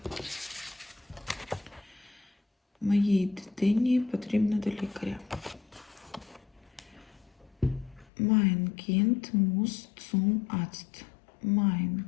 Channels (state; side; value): drops out; right; at 8.1 s